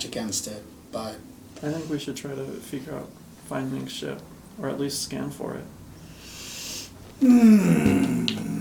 against it, but I think we should try to figure out, find Mink's ship, or at least scan for it.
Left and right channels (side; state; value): both; identical; correlation 1.00